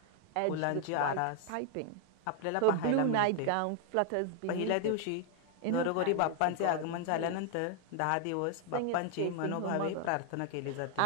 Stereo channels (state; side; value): different; both; correlation 0.00